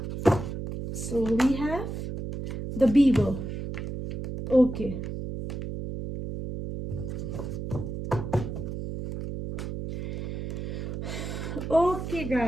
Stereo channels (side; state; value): right; noise; hum, 6 dB below the sound